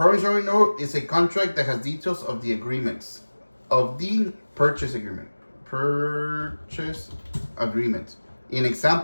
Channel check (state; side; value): inverted; both; correlation -1.00